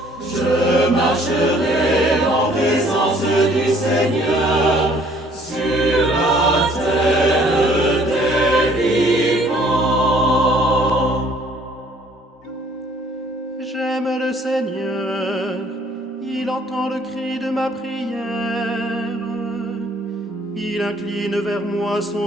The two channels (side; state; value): both; normal; correlation 0.59